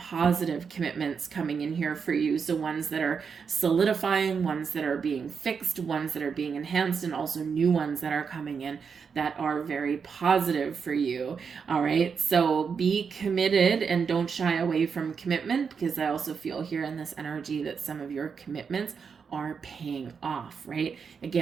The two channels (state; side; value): quieter; left; 6.1 dB